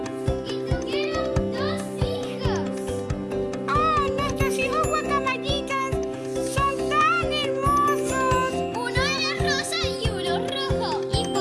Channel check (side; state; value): both; identical; correlation 1.00